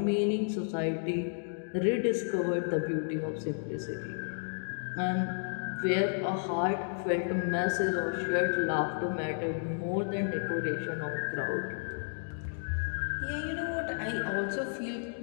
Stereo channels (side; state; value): right; silent; digital silence